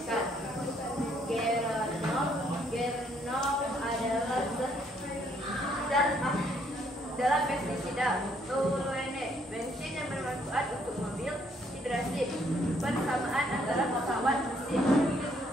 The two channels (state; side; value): normal; both; correlation 0.68